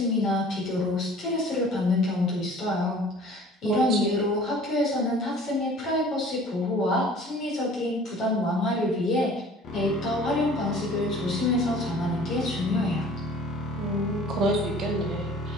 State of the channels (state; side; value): normal; both; correlation 0.48